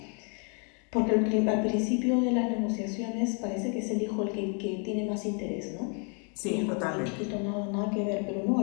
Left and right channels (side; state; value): right; quieter; 38.9 dB